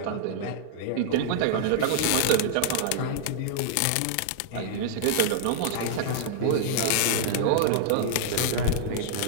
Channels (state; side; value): different; both; correlation -0.01